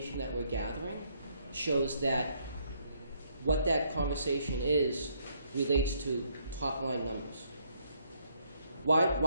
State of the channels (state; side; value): inverted; both; correlation -0.70